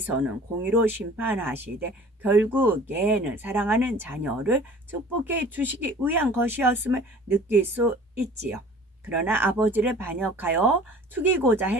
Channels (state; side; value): normal; both; correlation 0.47